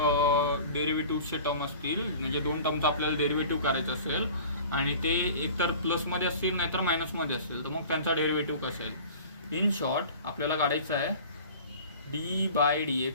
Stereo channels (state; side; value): inverted; both; correlation -0.41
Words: डेरिव्हेटिव्हचे टर्म असतील, म्हणजे दोन टर्मचा आपल्याला डेरिव्हेटिव्ह करायचं असेल आणि ते एकतर प्लसमध्ये असतील नाहीतर मायनसमध्ये असतील, तर मग त्यांचा डेरिव्हेटिव्ह कसा आहे. इन शॉर्ट आपल्याला काढायचं आहे